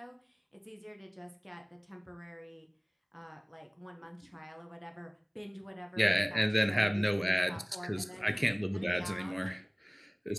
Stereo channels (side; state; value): both; identical; correlation 1.00